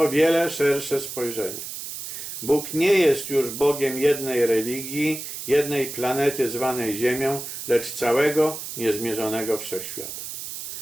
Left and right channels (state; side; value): noise; right; hiss, 8 dB below the sound